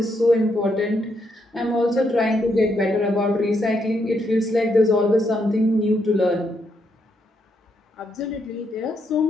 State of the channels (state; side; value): normal; both; correlation 0.77